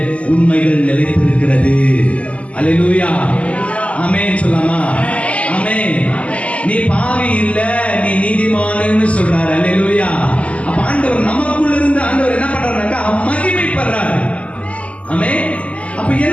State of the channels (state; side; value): late; right; 0.064 ms